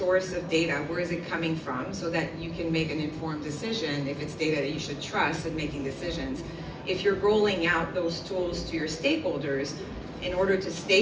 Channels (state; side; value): identical; both; correlation 1.00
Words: of data. Where is it coming from, so that you can make an informed decision if it's data that you should trust in making decisions. If you're rolling out those tools to your stakeholders, in order to